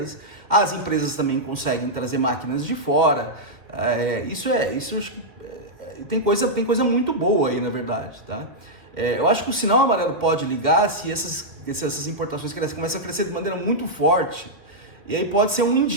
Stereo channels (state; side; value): late; left; 2.4 ms